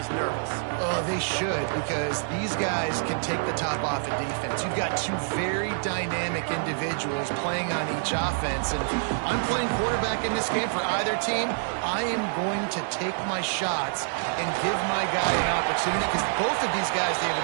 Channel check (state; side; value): silent; left; digital silence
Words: nervous. Oh, they should, because these guys can take the top off of defense. You've got two very dynamic individuals playing on each offense, and I'm playing quarterback in this game for either team. I am going to take my shots and give my guy an opportunity, because both of these guys,